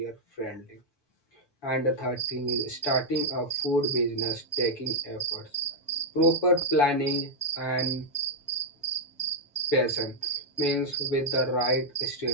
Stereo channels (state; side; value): late; right; 7.1 ms